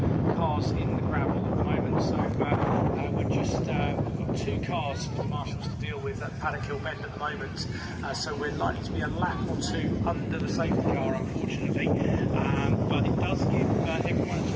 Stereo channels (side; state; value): both; identical; correlation 1.00